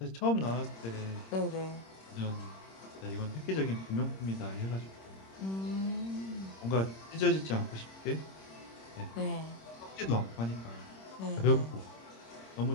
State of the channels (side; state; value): right; late; 26 ms